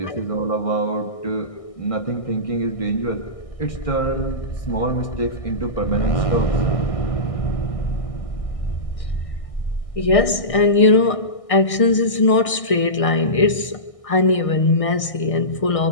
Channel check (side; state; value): right; late; 1.6 ms